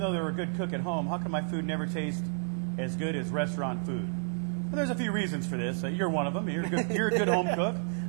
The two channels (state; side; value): silent; left; 57 dB below the other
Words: they're a good cook at home, how come my food never tastes as good as restaurant food? Well, there's a few reasons for this. You're one of them. You're a good home cook.